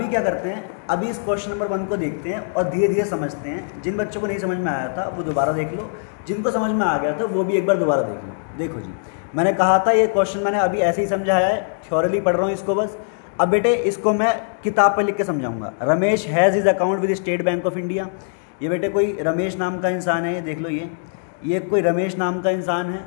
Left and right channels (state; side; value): silent; right; digital silence